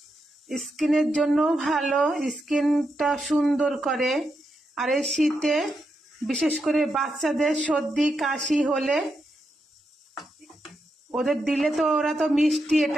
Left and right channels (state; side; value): normal; both; correlation 0.84